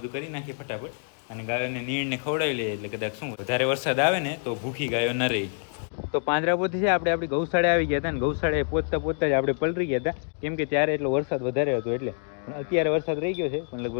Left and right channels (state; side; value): silent; right; 60 dB below the other